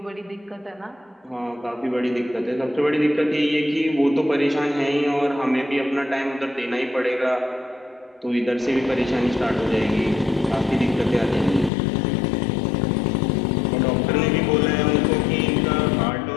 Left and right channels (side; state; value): right; drops out; at 11.7 s